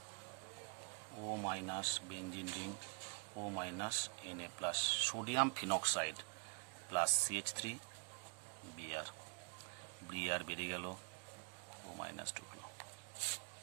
O minus benzene ring O minus Na plus sodium phenoxide plus CH3 Br, Br বেরিয়ে গেল, ও মাইনাস ঢুকলো।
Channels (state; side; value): quieter; left; 39.9 dB